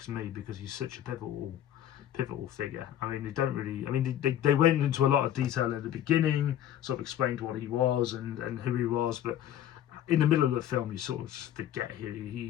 me because he's such a pivotal figure. I mean, they don't really. I mean, they went into a lot of detail in the beginning, sort of explained what he was and who he was, but in the middle of the film, you sort of forget he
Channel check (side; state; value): right; quieter; 11.2 dB